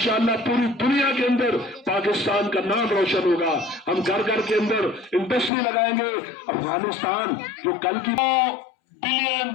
پوری دنیا کے اندر پاکستان کا نام روشن ہوگا. ہم گھر گھر کے اندر انڈسٹری لگائیں گے. افغانستان جو کل کی $9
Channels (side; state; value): right; drops out; at 5.5 s